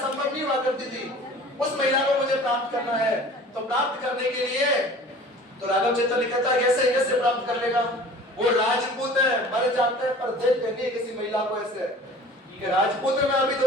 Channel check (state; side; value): normal; both; correlation 0.44